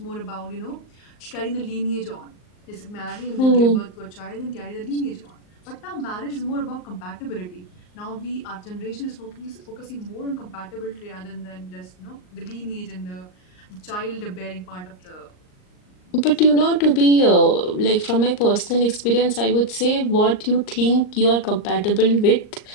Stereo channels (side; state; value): right; late; 38 ms